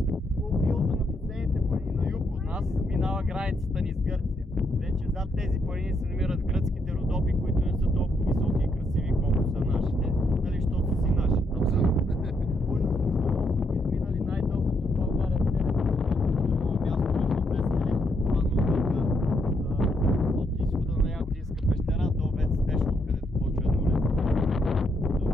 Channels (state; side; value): normal; both; correlation 0.76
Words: По билото на последните планини на юг от нас минава границата ни с Гърция. Вече зад тези планини се намират гръцките Родопи, които не са толкова високи и красиви, колкото са нашите, нали, защото са си наши. Изминали най-дългото в България 7 място между две скали от изхода на Ягодинска пещера до Вец Спешъл, където почва еднолетно.